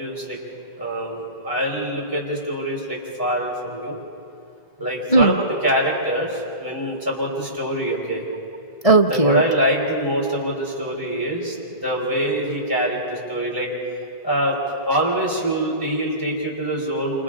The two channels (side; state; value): right; late; 1.7 ms